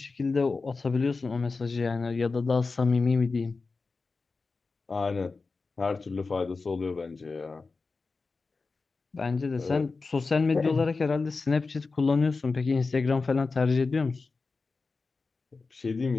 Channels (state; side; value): quieter; right; 4.1 dB